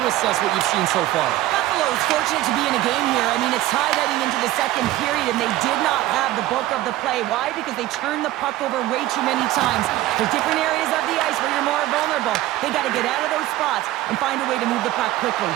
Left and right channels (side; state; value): left; quieter; 15.5 dB